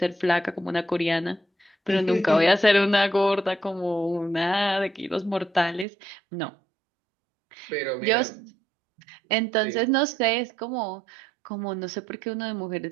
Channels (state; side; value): drops out; left; at 5.9 s